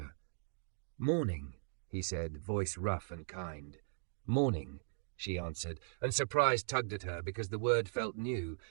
"Morning," he said, voice rough and kind. "Morning," she answered, and surprise tugged at her because the word felt new,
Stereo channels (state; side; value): silent; left; digital silence